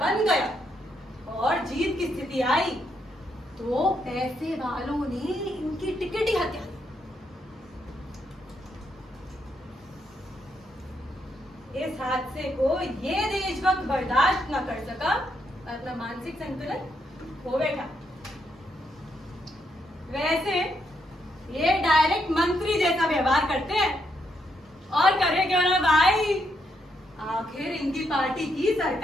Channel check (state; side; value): normal; both; correlation 0.78